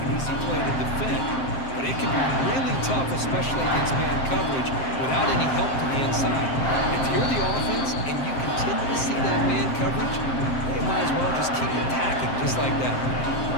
an easy play to defend, but it can be really tough, especially against man coverage, without any help to the inside. If you're the offense and you continue to see that man coverage, they might as well just keep attacking just like that.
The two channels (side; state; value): right; late; 7.6 ms